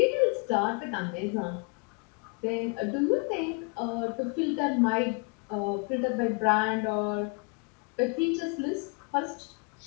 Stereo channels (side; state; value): right; quieter; 32.1 dB